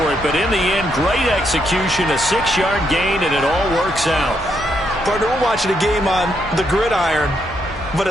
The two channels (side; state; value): both; normal; correlation 0.77